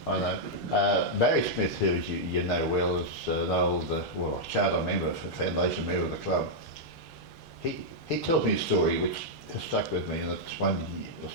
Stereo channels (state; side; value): normal; both; correlation -0.05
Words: Barry Smith, who you know well, is an old charter member, foundation member of the club. He tells me a story which has stuck with me, and it's one will